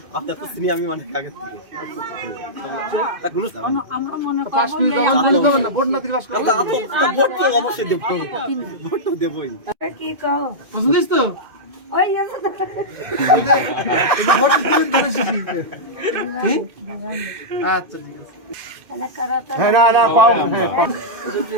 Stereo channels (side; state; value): left; late; 2.3 ms